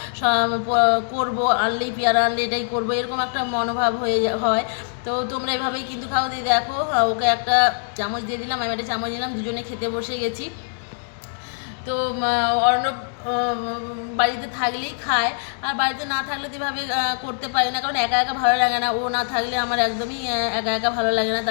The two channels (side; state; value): right; silent; digital silence